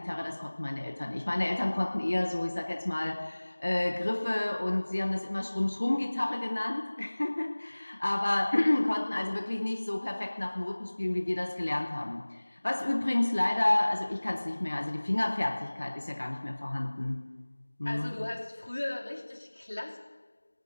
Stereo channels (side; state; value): both; inverted; correlation -1.00